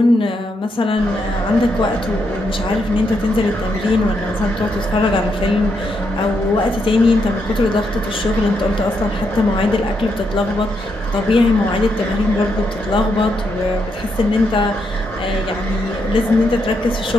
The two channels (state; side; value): normal; both; correlation 0.80